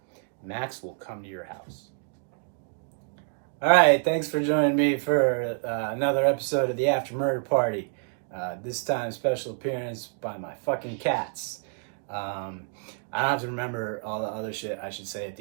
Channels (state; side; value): silent; left; 59 dB below the other